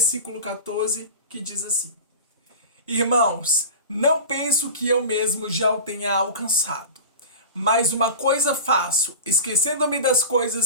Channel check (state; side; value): inverted; both; correlation -0.31